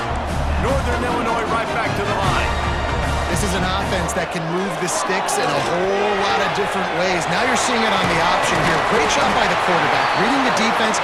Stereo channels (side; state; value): both; identical; correlation 1.00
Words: Northern Illinois right back to the line. This is an offense that can move the sticks in a whole lot of different ways. Now you're seeing it on the option here. Great job by the quarterback. Reading the defense,